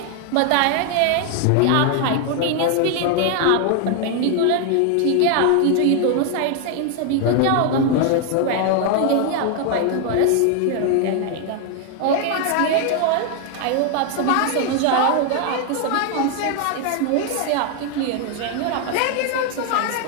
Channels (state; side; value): different; both; correlation 0.00